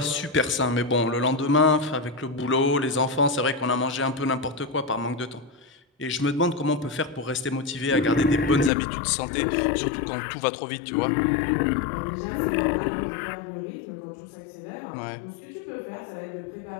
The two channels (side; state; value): right; drops out; at 8.7 s